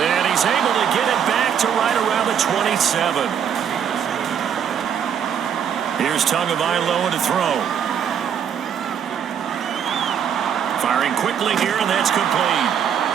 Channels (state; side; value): quieter; left; 8.2 dB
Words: he's able to get it back to right around the 27. Here's Tagovailoa to throw. Firing quickly here, and that's complete.